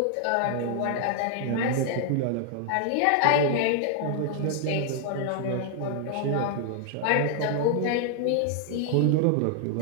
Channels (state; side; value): different; both; correlation 0.00